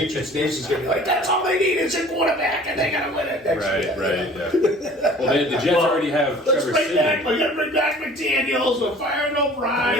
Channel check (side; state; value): both; normal; correlation 0.48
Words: Nation is going to be like, that's all they need is a quarterback, and they're going to win it next year. Right. Yeah. Well, the Jets already have Let's Trevor bring back. Siemian. We're going to bring back McDaniels. We're firing